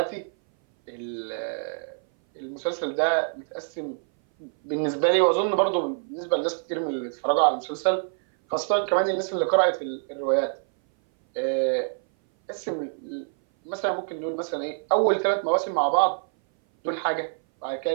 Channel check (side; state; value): left; silent; 58 dB below the other